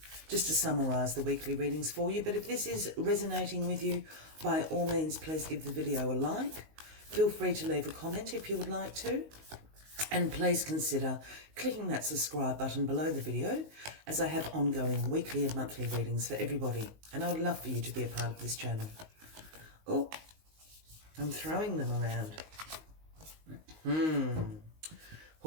just to summarise the weekly readings for you. But if this is resonating with you, by all means, please give the video a like. Feel free to leave a comment if you would like to. And please consider clicking that subscribe button below the video, as I have ongoing weekly and monthly readings for everybody. And I would love for you to be a part of this channel. Oh, I'm throwing them around.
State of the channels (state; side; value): late; left; 19 ms